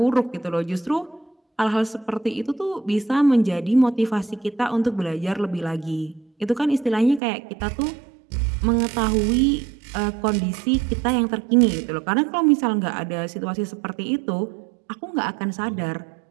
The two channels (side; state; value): left; drops out; at 7.2 s